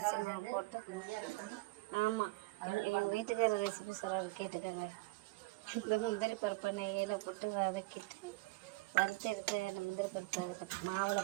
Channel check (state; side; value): quieter; left; 22.7 dB